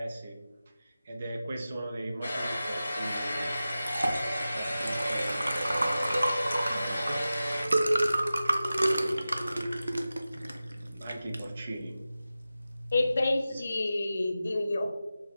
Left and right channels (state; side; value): inverted; both; correlation -0.94